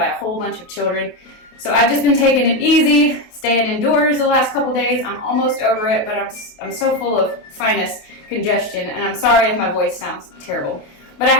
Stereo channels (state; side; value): late; right; 28 ms